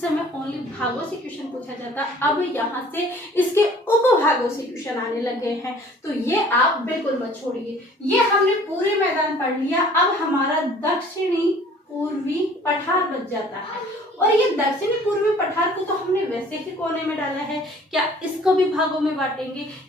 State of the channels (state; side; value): normal; both; correlation 0.52